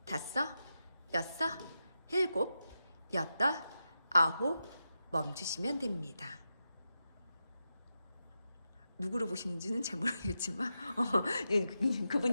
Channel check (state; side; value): inverted; both; correlation -0.89